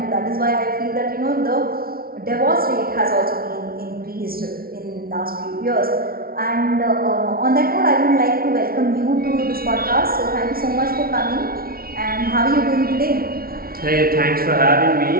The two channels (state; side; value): late; left; 0.43 ms